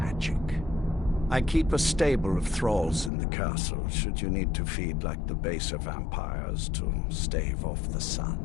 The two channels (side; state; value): right; drops out; at 3.1 s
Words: I keep a stable of thralls in the castle, should you need to feed like the baser vampires to stave off the sun.